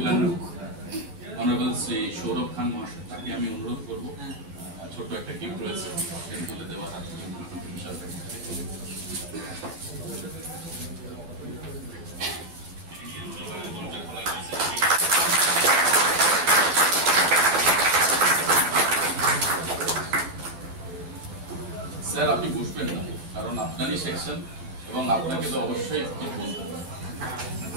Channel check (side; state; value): left; late; 12 ms